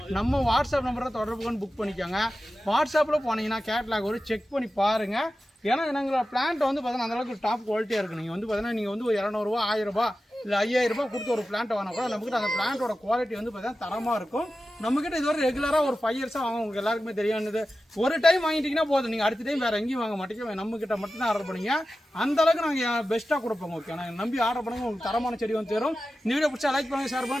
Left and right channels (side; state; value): both; normal; correlation 0.93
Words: நம்ம வாட்ஸ்அப் நம்பரில் தொடர்பு கொண்டு புக் பண்ணிக்கோங்க. வாட்ஸ்அப்பில் போனீங்கன்னா கேட்லாக் ஒரு செக் பண்ணி பாருங்கள். ஏன்னா எங்களோட பிளான்ட் வந்து பார்த்தீங்கன்னா அந்தளவுக்கு டாப் குவாலிட்டியாக இருக்குது. நீங்கள் வந்து பார்த்தீங்கன்னா நீங்கள் வந்து ஒரு 200 ரூபா 1000 ரூபா இல்லை 5000 ரூபாய் கொடுத்து ஒரு பிளான்ட் வாங்கினா கூட நம்மக்கிட்ட அந்த பிளான்ட்டோட குவாலிட்டி வந்து பார்த்தீங்கன்னா தரமாக இருக்கும். நம்மக்கிட்ட இதுவரை ரெகுலராக ஒரு 5 இயர்ஸாக வாங்க உங்களுக்கு எல்லாருக்குமே தெரியானது. ஒரு டைம் வாங்கிட்டீங்கன்னா போதும், நீங்கள் அடுத்த டைம் வேறு எங்கேயும் வாங்க மாட்டீங்க, நம்மக்கிட்ட மட்டும் தான் ஆர்டர் பண்ணிங்க. அந்தளவுக்கு நாங்கள் பெஸ்ட்டாக கொடுப்போம். ஓகே, நாங்கள் நம்பி ஆர்டர் பண்ணுங்க, உங்களுக்கு தரமான செடி வந்து தரும். இந்த வீடியோ பிடிச்சா லைக் பண்ணுங்கள், ஷேர்